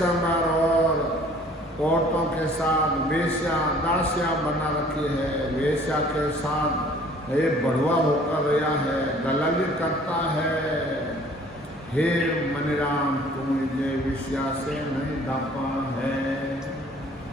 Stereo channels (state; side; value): normal; both; correlation 0.54